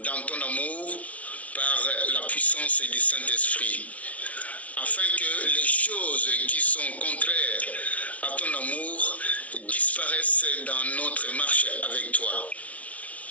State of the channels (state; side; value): late; right; 0.067 ms